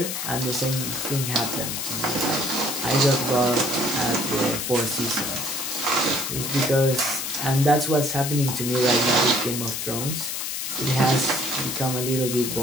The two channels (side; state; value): left; noise; hiss, 3 dB below the sound